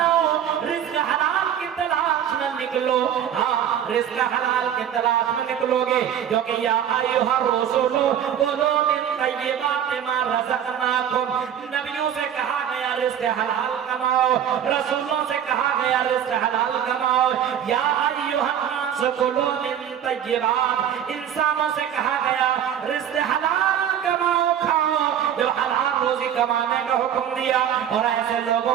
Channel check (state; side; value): quieter; left; 9.5 dB